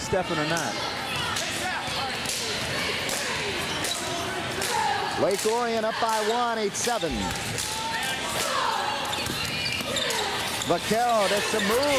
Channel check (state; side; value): identical; both; correlation 1.00